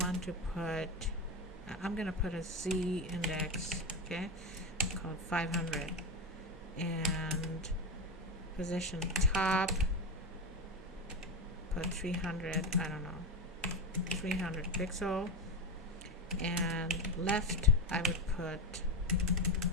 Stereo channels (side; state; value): both; normal; correlation 0.15